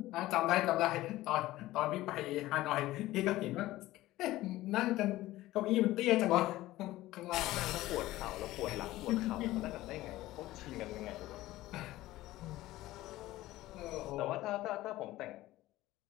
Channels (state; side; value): quieter; right; 16.6 dB